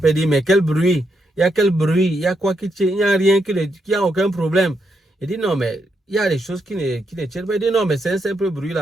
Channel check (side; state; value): both; normal; correlation 0.80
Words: Il dit, mais quel bruit? Il y a quel bruit? Il y a quoi qui tient? Il n'y a rien qui a aucun problème. Il dit, non, mais il y a des choses qui ne tiennent pas. Il dit, non, mais c'est un simple bruit